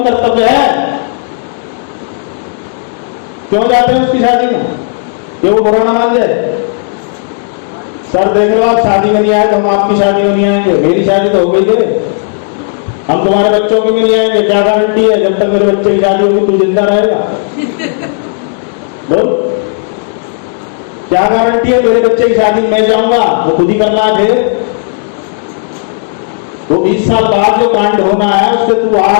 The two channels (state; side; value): silent; right; digital silence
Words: कर्तव्य है। क्यों जाते हैं उसकी शादी में? ये वो बुरा ना मान जाए। सर देख लो, आप शादी में नहीं आए तो हम आपकी शादी में नहीं आएंगे। मेरी शादी तो हो गई है, हम तुम्हारे बच्चों की में नहीं आएंगे। क्या गारंटी है जब तक मेरे बच्चे की शादी होगी तू जिंदा रहेगा? बोल, क्या गारंटी है मेरे बच्चे की शादी में मैं जाऊंगा? वो खुद ही करना है। वो 20 साल बाद जो कांड होना है उससे तू